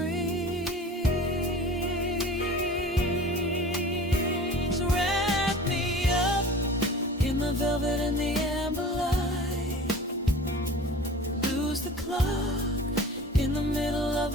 Wrap me up in the velvet and the amber light. Lose the clock in the middle of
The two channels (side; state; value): both; normal; correlation 0.40